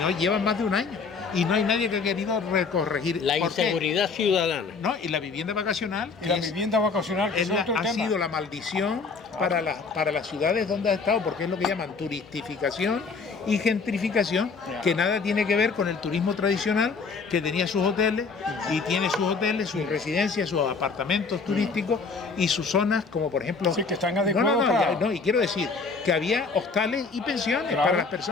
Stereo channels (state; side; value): quieter; right; 4.7 dB